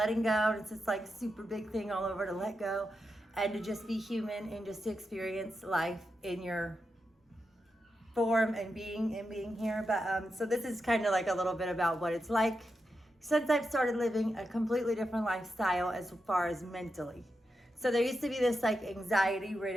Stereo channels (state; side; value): normal; both; correlation 0.87